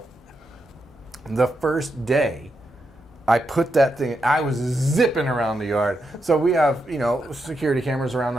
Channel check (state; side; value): normal; both; correlation 0.84